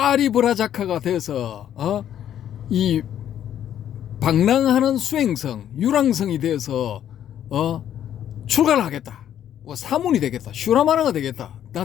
돼서 이 방랑하는 수행성, 유랑성이 돼서 출가를 하겠다. 사문이 되겠다. 슈라마나가 되겠다. 나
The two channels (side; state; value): right; quieter; 10.4 dB